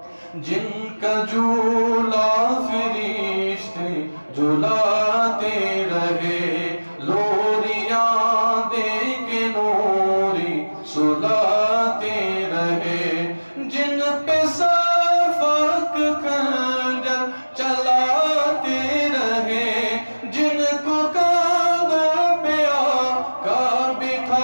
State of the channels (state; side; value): inverted; both; correlation -1.00